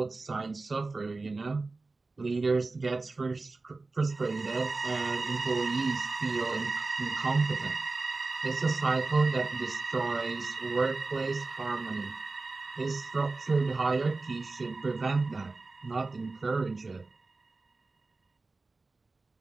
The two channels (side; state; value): left; quieter; 3.6 dB